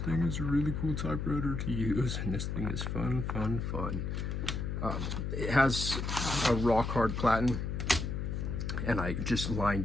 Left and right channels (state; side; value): noise; left; hum, 2 dB below the sound